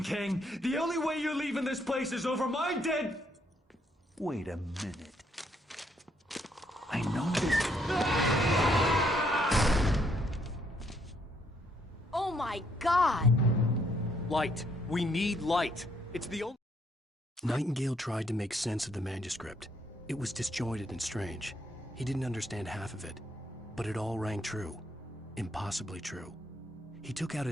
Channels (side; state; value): both; normal; correlation 0.71